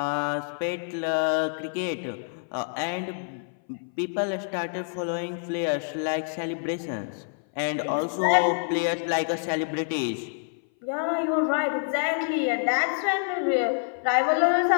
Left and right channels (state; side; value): silent; right; 58 dB below the other